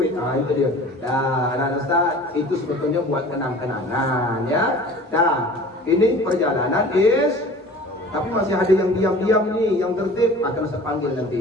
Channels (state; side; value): normal; both; correlation 0.44